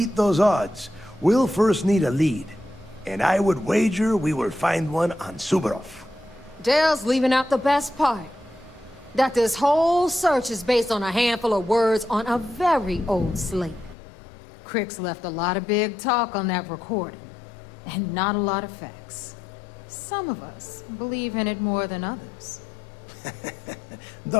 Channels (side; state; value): right; drops out; at 14.0 s